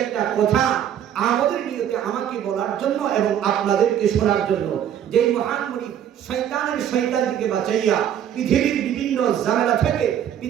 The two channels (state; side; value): quieter; left; 9.9 dB